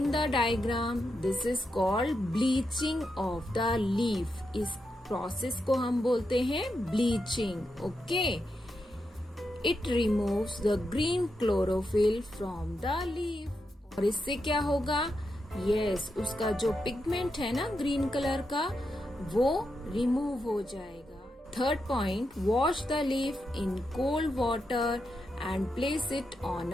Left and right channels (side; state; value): both; normal; correlation 0.85